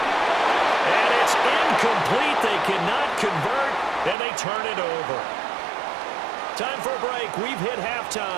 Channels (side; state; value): left; drops out; at 4.2 s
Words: it's incomplete. They cannot convert, and they turn it over. Time for a break. We've hit